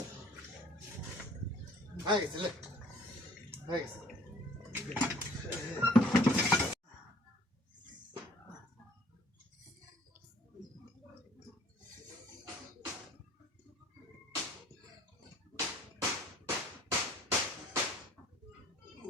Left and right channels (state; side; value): normal; both; correlation 0.56